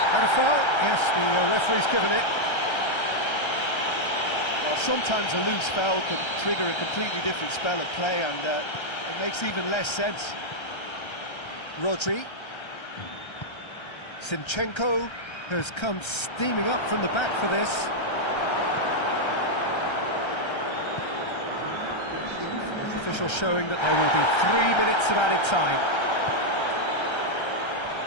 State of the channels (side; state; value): right; late; 1.3 ms